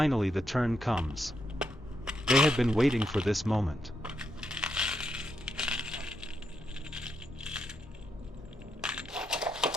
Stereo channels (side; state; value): both; normal; correlation 0.81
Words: the turn comes. They had been waiting for this moment.